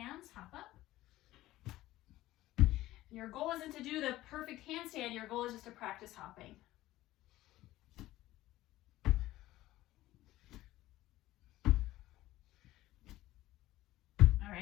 hop up. And your goal isn't to do the perfect handstand. Your goal is just to practice hopping. All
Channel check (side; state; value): right; quieter; 16.1 dB